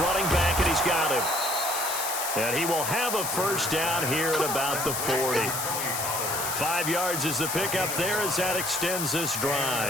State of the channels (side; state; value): left; noise; hiss, 3 dB below the sound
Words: back, and he's got him. And he will have a first down here at about the 40. 5 yards is the pickup there as that extends this